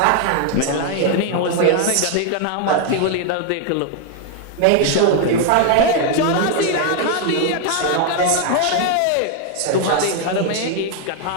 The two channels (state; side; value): different; both; correlation 0.00